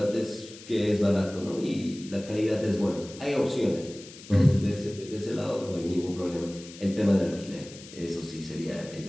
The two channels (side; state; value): left; noise; hiss, 17 dB below the sound